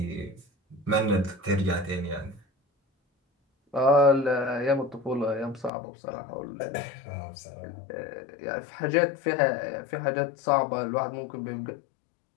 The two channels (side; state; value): right; drops out; at 5.7 s